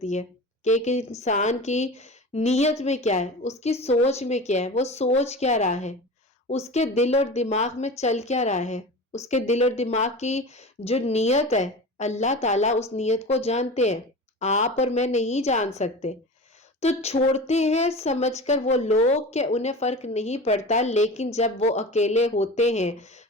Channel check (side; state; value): both; normal; correlation 0.32